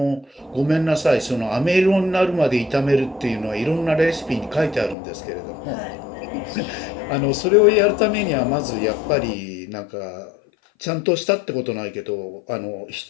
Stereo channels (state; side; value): drops out; right; at 5.0 s